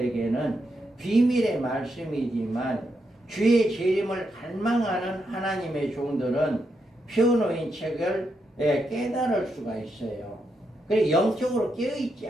비밀의 말씀이지만 주의 재림을 갈망하는 하나님의 종들은 펴놓인 책을 깨달을 수가 있어요. 그래 영적으로 깨어있지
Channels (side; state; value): both; normal; correlation 0.82